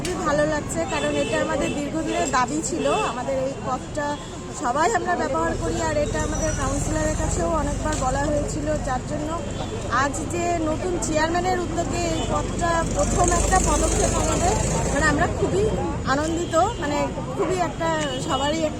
ভালো লাগছে, কারণ এটা আমাদের দীর্ঘদিনের দাবি ছিল। আমাদের এই পথটা সবাই আমরা ব্যবহার করি, আর এটা আমাদের কাউন্সিলরের কাছেও অনেকবার বলা হয়েছিল, যার জন্য আজ যে নতুন চেয়ারম্যানের উদ্যোগে এই পথটা প্রথম একটা পদক্ষেপ আমাদের, মানে আমরা খুবই আনন্দিত, মানে খুবই একটা সবারই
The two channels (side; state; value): both; identical; correlation 1.00